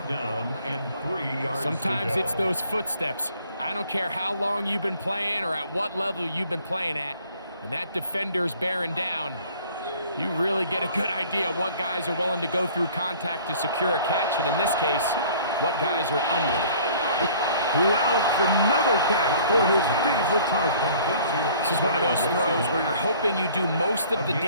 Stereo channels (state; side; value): inverted; both; correlation -0.53